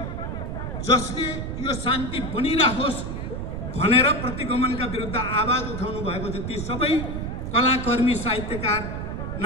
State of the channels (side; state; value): right; noise; rumble, 5 dB below the sound